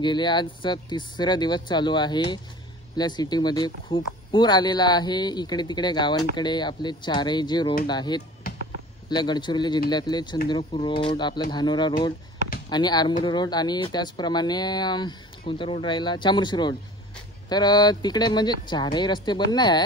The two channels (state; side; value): normal; both; correlation 0.43